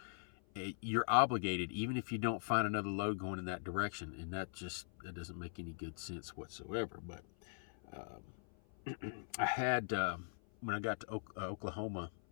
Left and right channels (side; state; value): right; silent; 50 dB below the other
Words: you're obligated, even if you don't find another load going in that direction. And that doesn't make any good sense whatsoever. But I had, when I got to Oklahoma